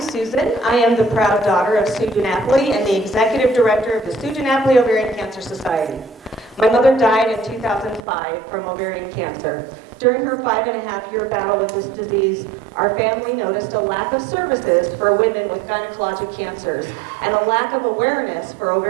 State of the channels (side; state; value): left; drops out; at 8.0 s